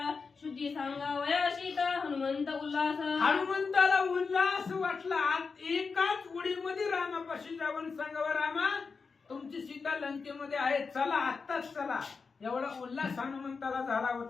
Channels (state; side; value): quieter; right; 4.9 dB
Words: शुद्धी सांगावया सीता हनुमंत उल्हास. हनुमंताला उल्हास वाटला. एकाच उडीमध्ये रामापाशी जाऊन सांगावं, रामा तुमची सीता लंकेमध्ये आहे, चला आत्ताच चला. एवढा उल्हास हनुमंताला झाला